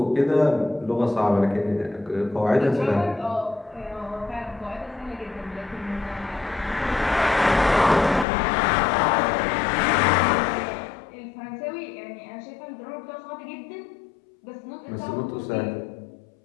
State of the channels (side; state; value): right; drops out; at 8.2 s